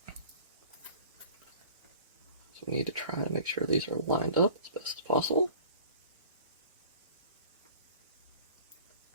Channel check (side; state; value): both; inverted; correlation -0.46